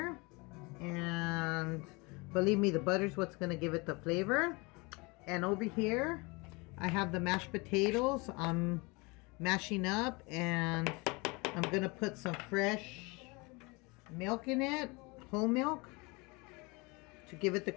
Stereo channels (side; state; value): right; quieter; 26.9 dB